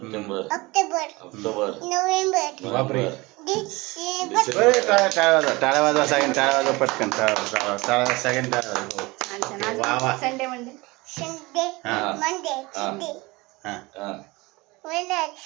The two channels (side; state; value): left; quieter; 22.8 dB